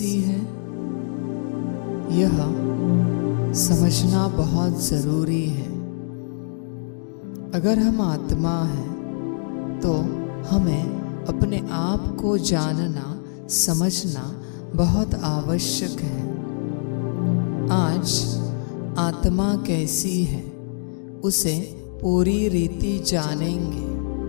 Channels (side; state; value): right; silent; digital silence